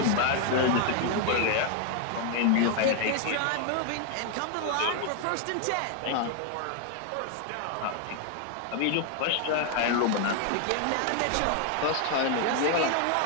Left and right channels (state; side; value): different; both; correlation 0.00